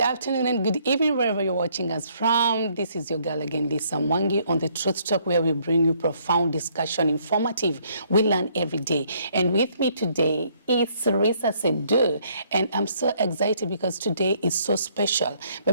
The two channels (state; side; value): inverted; both; correlation -0.66